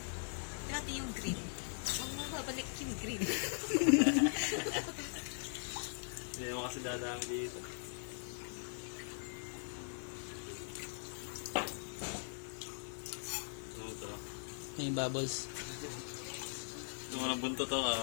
Dati yung green. Huwag mo babalik yung green. Hindi naman kasi dadami dito. Ano ito? May bubbles. Kung walang bunto to,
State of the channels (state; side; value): silent; right; digital silence